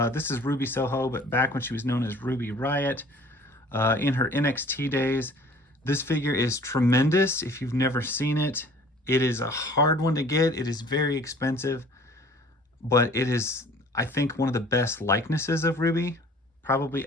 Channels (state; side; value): normal; both; correlation 0.50